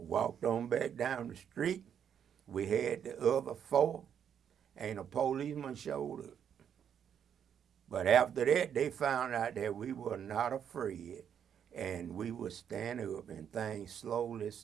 on back down the street. We had the other 4, and a policeman showed up. But after that, they found out that we were not afraid, and we would stand up, and things slowly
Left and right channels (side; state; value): left; quieter; 8.5 dB